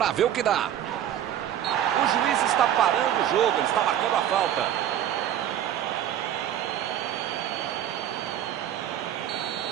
ver o que dá. O juiz está parando o jogo, ele está marcando a falta.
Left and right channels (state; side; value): quieter; left; 10.9 dB